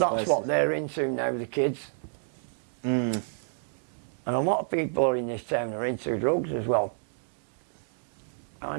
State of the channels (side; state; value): left; silent; digital silence